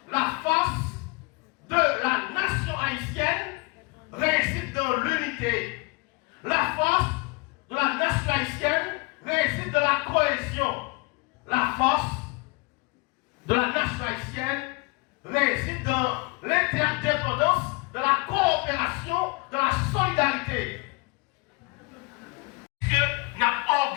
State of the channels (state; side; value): quieter; right; 27.8 dB